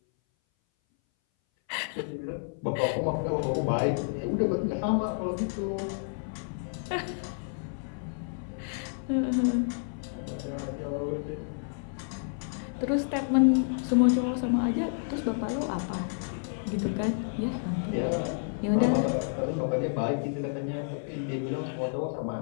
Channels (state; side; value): silent; right; 58 dB below the other